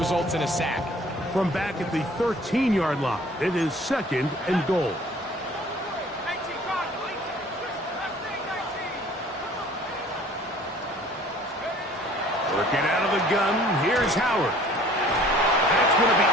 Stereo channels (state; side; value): normal; both; correlation 0.52